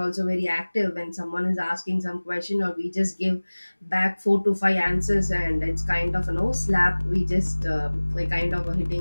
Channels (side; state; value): both; inverted; correlation -1.00